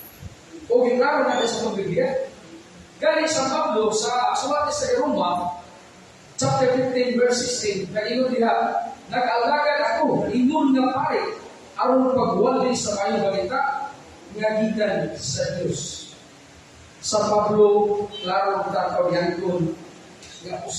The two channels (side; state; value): both; identical; correlation 1.00